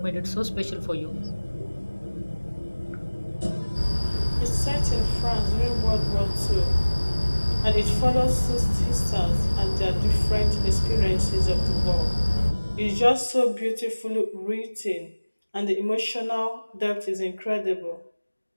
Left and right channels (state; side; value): inverted; both; correlation -1.00